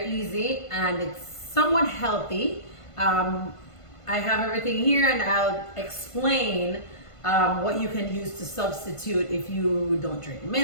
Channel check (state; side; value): late; right; 1.5 ms